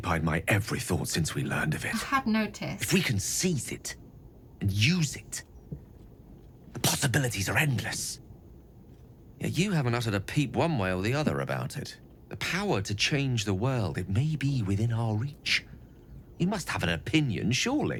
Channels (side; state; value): both; identical; correlation 1.00